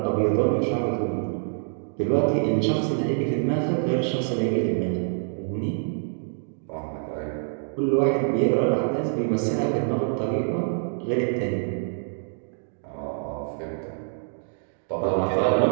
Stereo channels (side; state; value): left; silent; digital silence